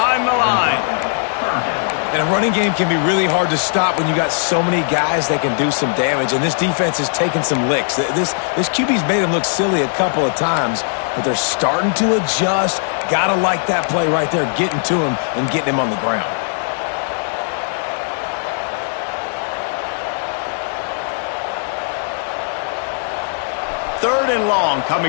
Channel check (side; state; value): right; silent; 61 dB below the other